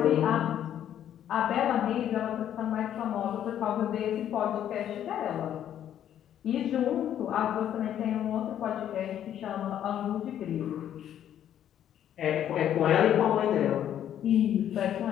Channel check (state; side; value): quieter; right; 10.5 dB